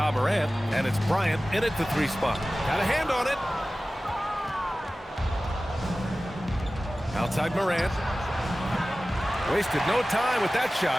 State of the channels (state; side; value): normal; both; correlation 0.96